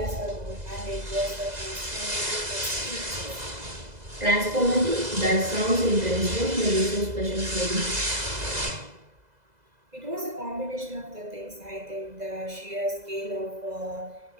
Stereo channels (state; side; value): late; left; 2.0 ms